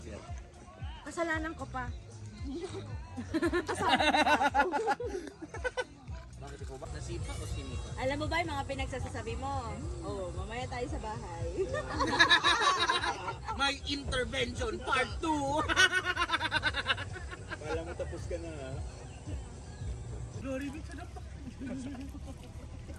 yan. Kasalanan ko pa. Bakit ikaw ba? Nasipa o sinita? Alam mo ba yung mga pinagsasasabi mo? Oo, mamaya tayo sa bahay. May intervention part 2. Kala mo tapos ka na, ha? Glory be to the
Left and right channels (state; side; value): identical; both; correlation 1.00